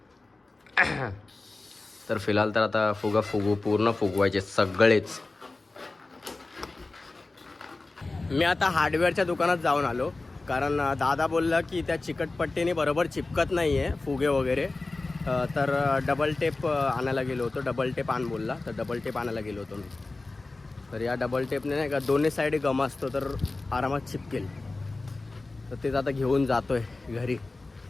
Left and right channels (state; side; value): quieter; right; 3.3 dB